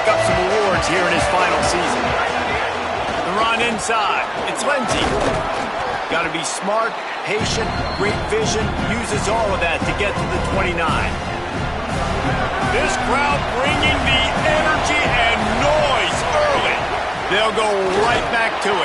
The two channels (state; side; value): identical; both; correlation 1.00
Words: up some awards here in his final season. The run inside. It's Lindsey. Got to be smart, patient, great vision, uses all of that to get to the 29. This crowd bringing the energy and noise early. They'll go right back to